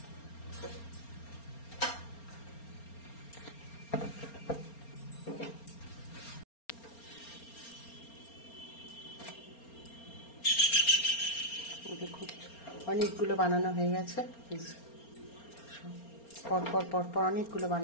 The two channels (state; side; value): late; right; 4.3 ms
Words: দেখুন অনেকগুলো বানানো হয়ে গেছে। পরপর পরপর অনেকগুলো